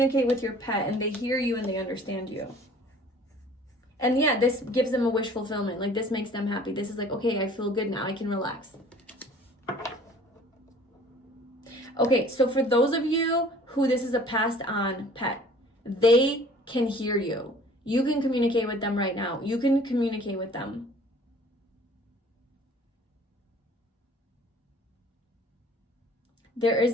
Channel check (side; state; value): both; normal; correlation 0.51